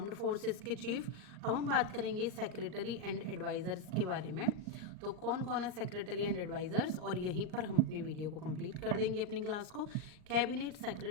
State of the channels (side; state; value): left; late; 39 ms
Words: फोर्सेस के चीफ। अब हम बात करेंगे सेक्रेटरी एंड एडवाइजर्स के बारे में। तो कौन कौन है सेक्रेटरी एंड एडवाइजर्स, और यहीं पर हम अपनी वीडियो को कंप्लीट कर देंगे अपनी क्लास को। कैबिनेट